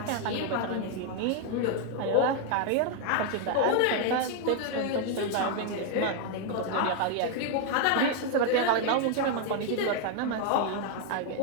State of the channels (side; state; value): both; different; correlation 0.00